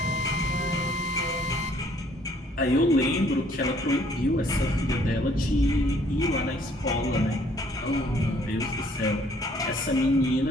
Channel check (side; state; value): both; normal; correlation 0.61